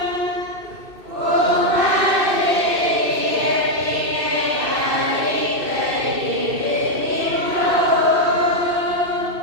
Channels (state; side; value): late; left; 2.6 ms